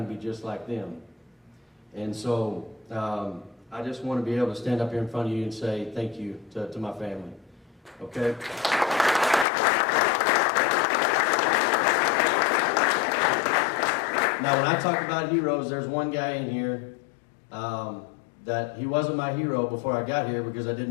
to be just like them. And so I just want to be able to stand up here in front of you and say thank you to my family. Okay? Now, when I talk about heroes, there's one guy in here that he wasn't my hero before I got here because I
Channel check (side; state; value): right; drops out; at 9.5 s